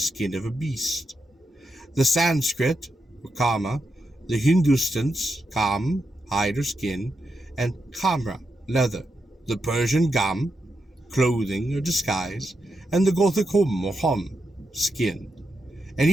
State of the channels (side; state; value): both; normal; correlation 0.85